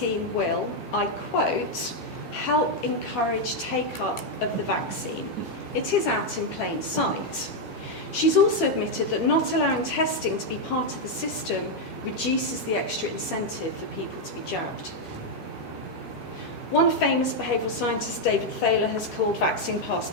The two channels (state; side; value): late; right; 8.5 ms